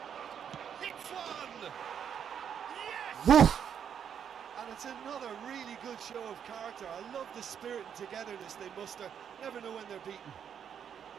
Hits one! Yes! Woof! And it's another really good show of character. I love the spirit and togetherness they muster. Never know when they're beaten.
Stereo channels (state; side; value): quieter; left; 8.2 dB